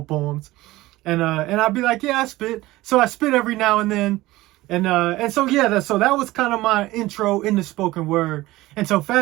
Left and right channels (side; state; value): left; quieter; 18.2 dB